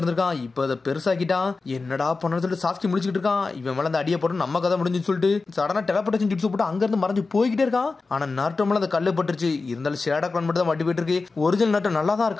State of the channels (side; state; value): right; quieter; 4.0 dB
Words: இப்ப அதை பெருசாக்கிட்டான். என்னடா பண்ணு சொல்லிட்டு சாஸ்கி முடிச்சுக்கிட்டு இருக்கான். இவன் மேல அந்த அடியை போட்டு நம்ம கதை முடிஞ்சுன்னு சொல்லிட்டு சடனா டெலபோர்டேஷன் ஜுட்ஸு போட்டு அங்க இருந்து மறைஞ்சு போய்கிட்டே இருக்கான். ஆனா நருட்டோ மேல அந்த கல்லு பட்டுருச்சு. இருந்தாலும் ஷேடோ கிளான் மட்டும் தான் வட்டி போயிட்டு இருக்கு. ஒரிஜினல் நருட்டோ நல்லா தான்